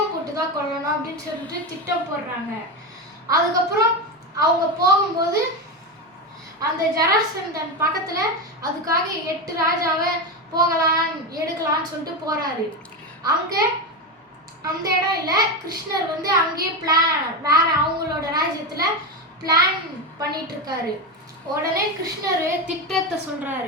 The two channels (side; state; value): both; normal; correlation 0.15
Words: போட்டு தான் கொல்லணும் அப்படின்னு சொல்லிட்டு திட்டம் போடுறாங்க. அதுக்கப்புறம் அவங்க போகும்போது அந்த ஜராசந்தன் பக்கத்தில் அதுக்காக 8 ராஜாவை எடுக்கலான்னு சொல்லிட்டு போகிறாரு. அங்கே அந்த இடம் இல்லை, கிருஷ்ணர் வந்து அங்கேயே வேற அவங்களோட ராஜ்யத்தில் பிளான் பண்ணிட்டு இருக்காரு. உடனே கிருஷ்ணர் திட்டத்தை